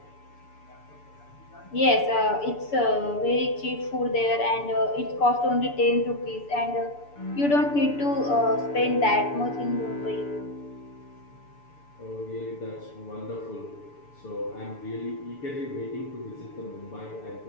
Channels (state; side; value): late; right; 6.9 ms